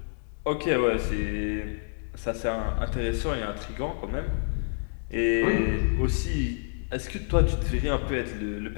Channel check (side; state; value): right; silent; digital silence